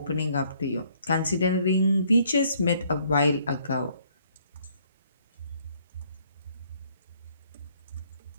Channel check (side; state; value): both; inverted; correlation -0.65